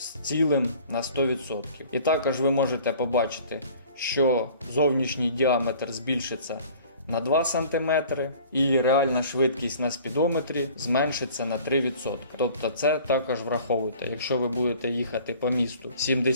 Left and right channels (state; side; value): inverted; both; correlation -0.49